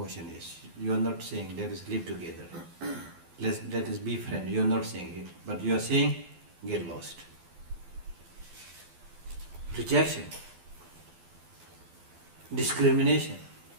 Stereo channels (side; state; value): left; late; 12 ms